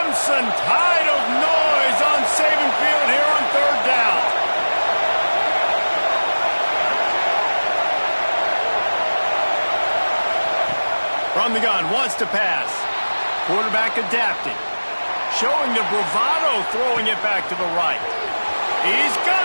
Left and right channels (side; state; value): both; inverted; correlation -1.00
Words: tide of noise on Saban Field here on third down. From the gun, wants to pass. Quarterback adapting. Showing the bravado, throwing it back to the right. He's